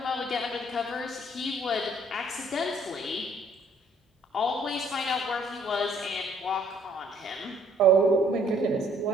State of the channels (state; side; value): normal; both; correlation 0.62